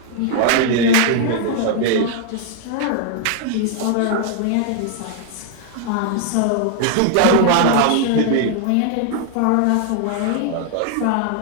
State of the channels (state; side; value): different; both; correlation 0.00